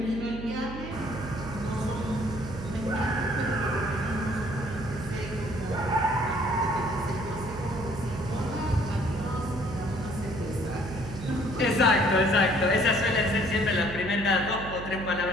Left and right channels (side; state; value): right; noise; hum, 10 dB below the sound